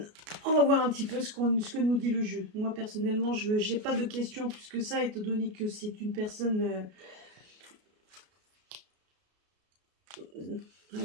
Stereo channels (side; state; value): left; late; 33 ms